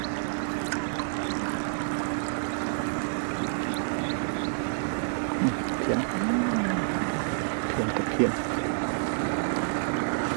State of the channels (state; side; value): silent; left; digital silence